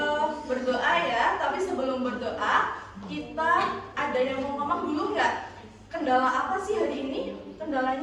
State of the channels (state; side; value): identical; both; correlation 1.00